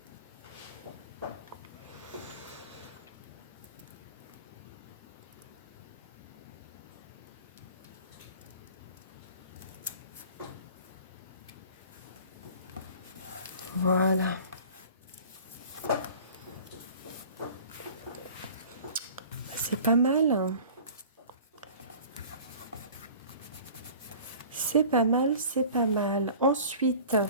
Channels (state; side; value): inverted; both; correlation -0.44